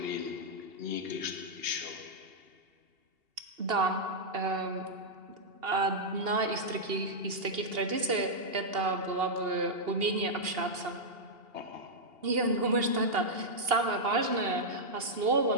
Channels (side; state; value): left; late; 2.8 ms